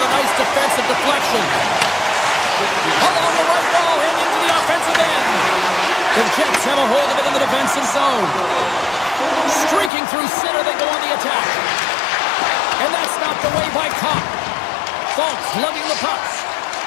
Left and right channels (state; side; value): drops out; right; at 9.9 s